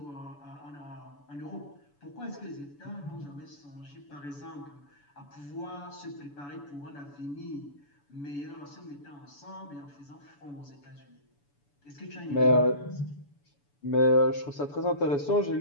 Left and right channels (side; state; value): right; late; 7.0 ms